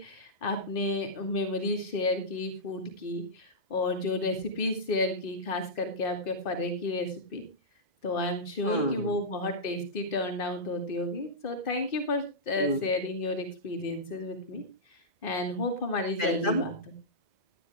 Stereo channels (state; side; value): late; right; 2.6 ms